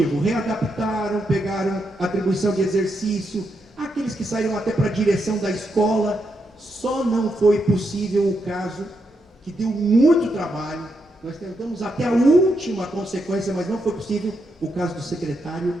readaptaram, pegaram atribuição de exercício, aqueles que saíram até para a direção da escola. Só não foi possível o caso que deu muito trabalho. Nós tentamos até a última consequência, mas não foi possível, o caso do secretário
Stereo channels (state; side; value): normal; both; correlation 0.82